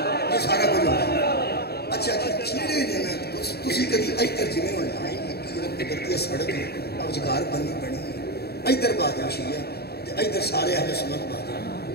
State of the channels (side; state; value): right; late; 0.46 ms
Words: سارا کچھ ہوتا ہے. اچھا چیڑے نے نا تسی کدی ادھر جویں ہونا کرتی سڑک روزگار بننی پڑنی ہے ادھر بادل شیعہ ادھر سارے اہل سنت بادل